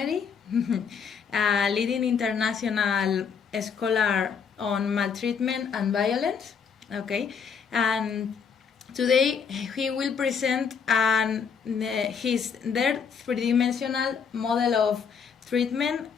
a leading international scholar on maltreatment and violence. Okay, and today he will present their three-dimensional model of treatment,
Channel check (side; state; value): right; quieter; 6.5 dB